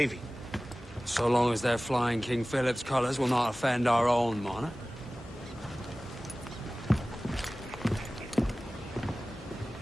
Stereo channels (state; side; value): normal; both; correlation 0.97